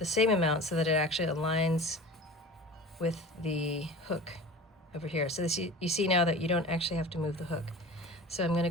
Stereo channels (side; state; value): both; normal; correlation 0.37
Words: same amount so that it actually aligns with the hook over here. So this, you see now that you don't actually have to move the hook. So I'm going to